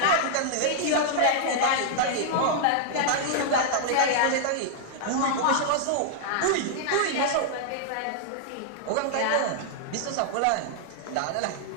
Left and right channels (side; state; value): both; different; correlation -0.01